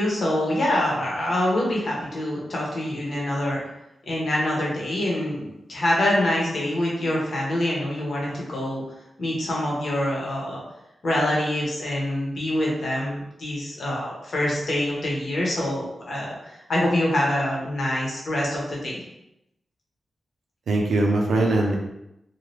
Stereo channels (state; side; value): normal; both; correlation 0.88